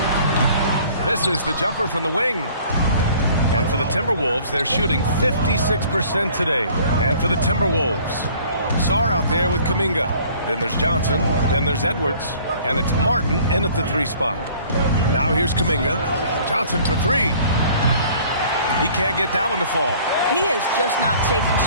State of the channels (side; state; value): both; inverted; correlation -0.53